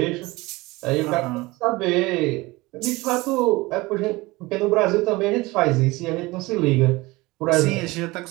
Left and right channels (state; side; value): quieter; left; 21.7 dB